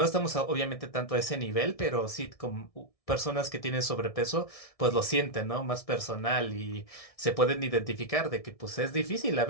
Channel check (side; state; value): right; late; 1.6 ms